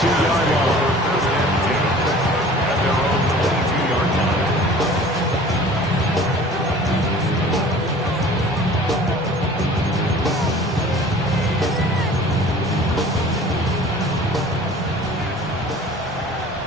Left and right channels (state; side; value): normal; both; correlation 0.46